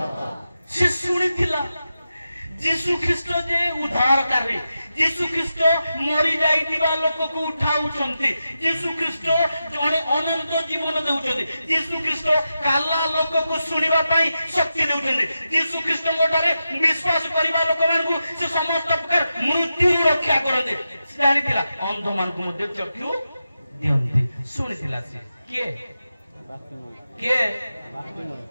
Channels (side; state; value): both; inverted; correlation -0.90